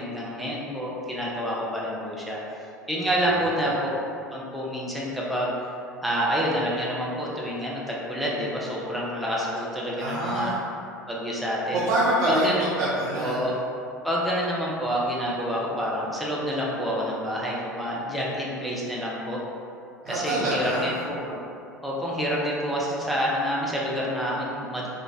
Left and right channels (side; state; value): both; normal; correlation 0.44